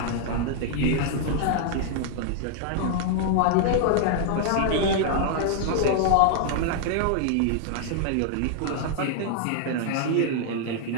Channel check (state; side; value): different; both; correlation 0.00